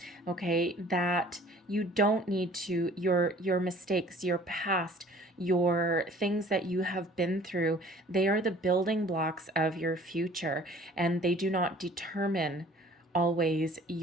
okay, that you don't need to, your mistakes, your past, your things that you have been through, they are the building blocks of your future, and they do not determine always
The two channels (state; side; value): normal; both; correlation 0.51